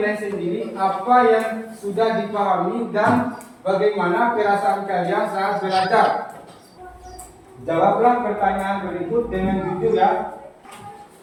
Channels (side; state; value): both; identical; correlation 1.00